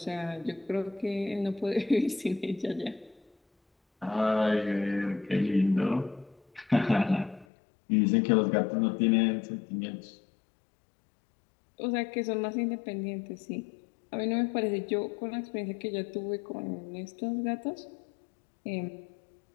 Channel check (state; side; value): drops out; right; at 7.5 s